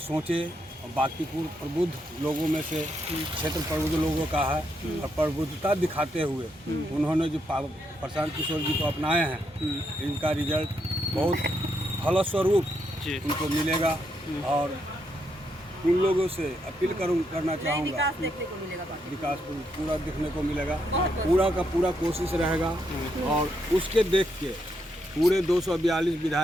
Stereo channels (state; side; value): normal; both; correlation 0.78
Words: और बांकीपुर प्रबुद्ध लोगों में से क्षेत्र प्रबुद्ध लोगों का है और प्रबुद्धता दिखाते हुए उन्होंने जो प्रशांत किशोर जी को अपनाए हैं, इनका रिजल्ट बहुत फलस्वरूप उनको मिलेगा। और उन लोगों से अपील करना चाहूँगा, विकास पूरा देखने को मिलेगा, पूरा का पूरा कोशिश रहेगा और उसके देख के पूरे 242